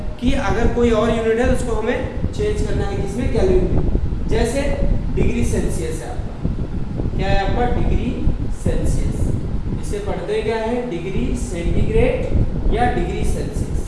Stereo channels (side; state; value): both; identical; correlation 1.00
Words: कि अगर कोई और यूनिट है तो उसको हमें चेंज करना है, किसमें, केल्विन में। जैसे डिग्री सेल्सियस है आपका, क्या है आपका, डिग्री सेल्सियस। इसे पढ़ते क्या है, डिग्री सेंटीग्रेड या डिग्री